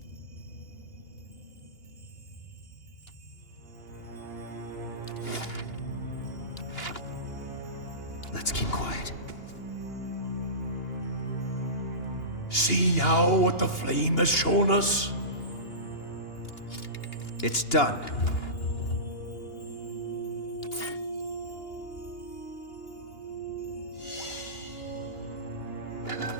see now what the flame has shown us? It's done.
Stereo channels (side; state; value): right; late; 2.8 ms